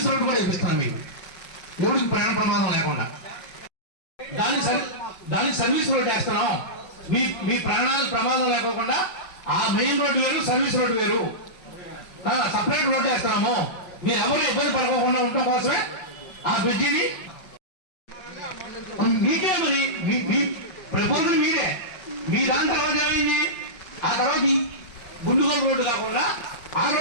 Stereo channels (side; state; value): right; late; 5.4 ms